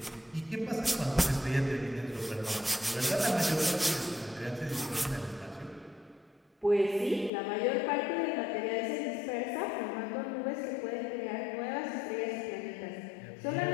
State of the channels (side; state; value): right; drops out; at 7.3 s